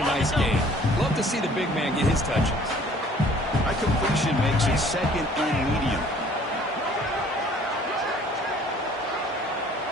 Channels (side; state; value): both; normal; correlation 0.55